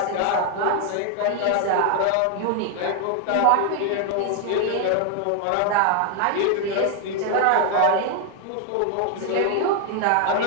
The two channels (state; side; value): different; both; correlation 0.00